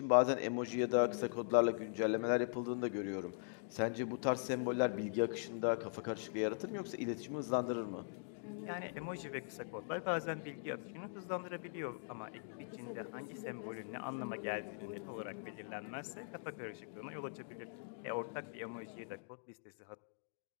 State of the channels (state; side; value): silent; right; digital silence